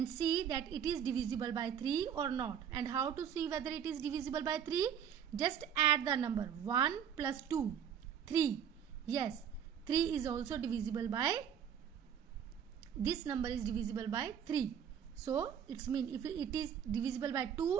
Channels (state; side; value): quieter; left; 8.4 dB